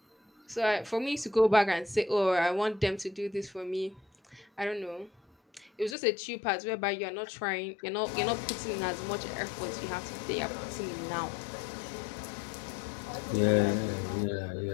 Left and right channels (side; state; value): right; drops out; at 6.0 s